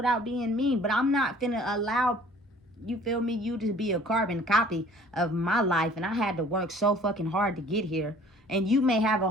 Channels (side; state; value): both; normal; correlation 0.52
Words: being mean, but I'm not finna allow, you feel me, you to be a carbon copy of my life, and I had to work so fucking hard to get here. And you may have a